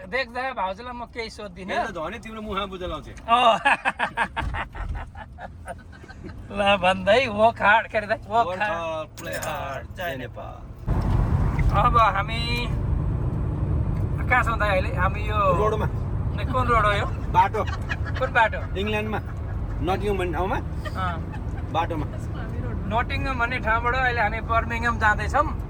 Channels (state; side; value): identical; both; correlation 1.00